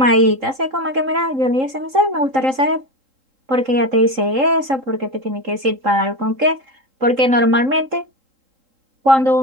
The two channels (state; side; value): late; left; 3.8 ms